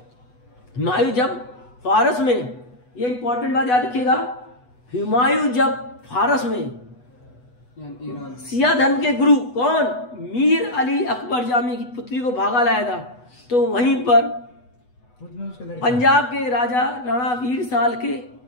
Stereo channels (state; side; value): late; right; 8.1 ms